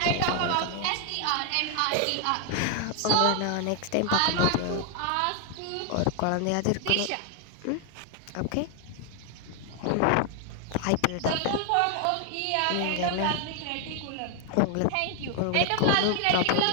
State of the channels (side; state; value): both; different; correlation 0.00